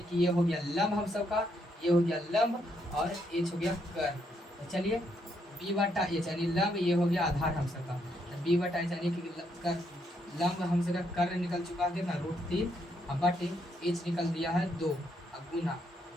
कि ये हो गया लंब हम सबका, ये हो गया लंब और H हो गया कर्व। तो चलिए B/H यानी लंब, ये हो गया आधार हम सबका, B/H यानी कि लंब हम सबका कर्व निकल चुका है कितना √3, अब बटे H निकल दिया है 2, अब गुना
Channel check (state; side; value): normal; both; correlation 0.76